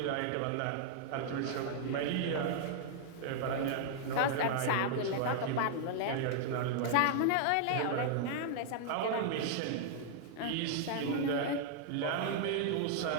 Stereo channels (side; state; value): both; different; correlation -0.01